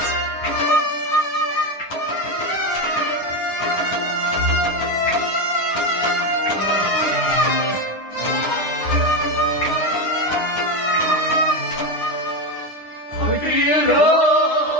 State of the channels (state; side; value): late; right; 9.9 ms